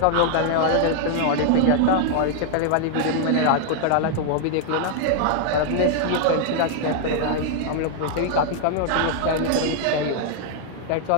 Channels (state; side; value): different; both; correlation 0.00